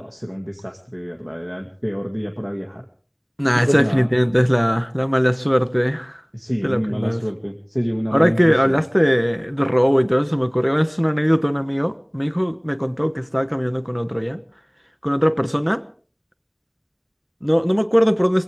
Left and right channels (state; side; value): identical; both; correlation 1.00